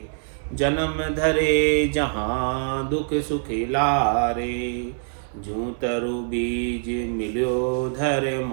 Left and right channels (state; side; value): silent; left; 61 dB below the other